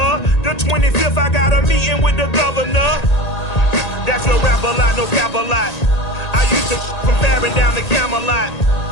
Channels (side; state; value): right; late; 1.8 ms